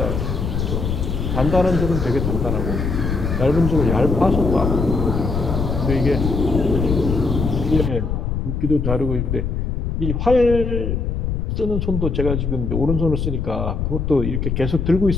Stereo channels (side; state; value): left; noise; rumble, 1 dB below the sound